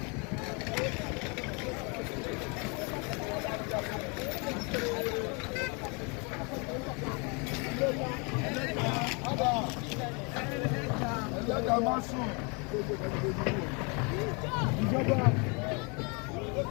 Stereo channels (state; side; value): quieter; right; 32.2 dB